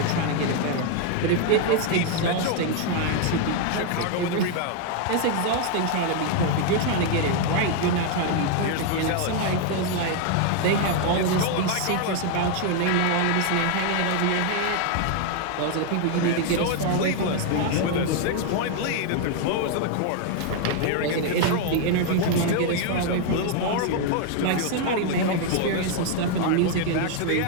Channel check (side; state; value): both; different; correlation 0.01